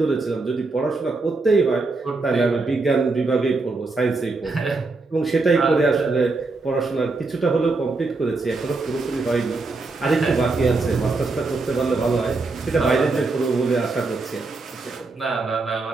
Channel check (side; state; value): left; quieter; 3.6 dB